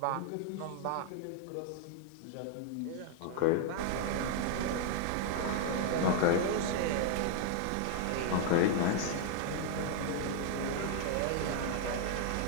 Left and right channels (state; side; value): different; both; correlation 0.00